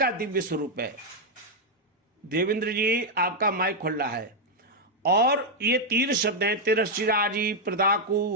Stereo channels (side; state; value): both; normal; correlation 0.01